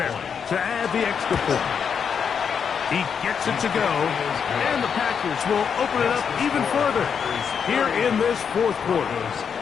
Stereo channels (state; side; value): quieter; right; 6.9 dB